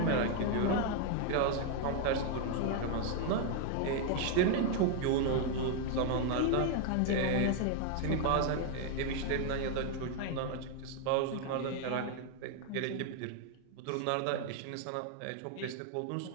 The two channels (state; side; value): different; both; correlation 0.00